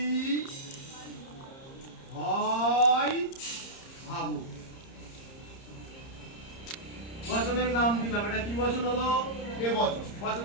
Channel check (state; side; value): late; right; 30 ms